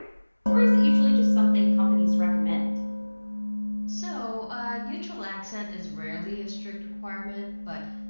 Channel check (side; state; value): both; inverted; correlation -1.00